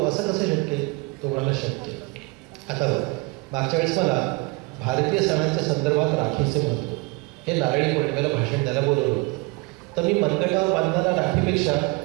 असं कसं शक्य आहे? तो म्हणाला शक्य. आता बघ, मागच्या वेळेस मला भारतीय सणांच्या संदर्भात राखीचे महत्त्व हे नारळी पौर्णिमेला भाषण द्यायला बोलवलं होतं. तर मी मनगटावर बांधणारा राखीपेक्षा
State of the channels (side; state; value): left; quieter; 26.8 dB